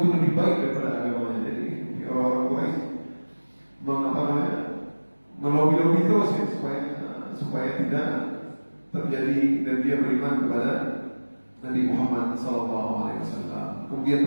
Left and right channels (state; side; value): inverted; both; correlation -1.00